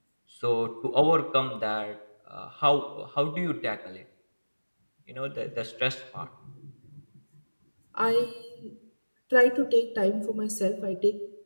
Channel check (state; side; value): inverted; both; correlation -1.00